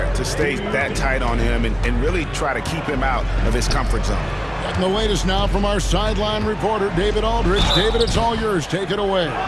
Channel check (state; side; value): identical; both; correlation 1.00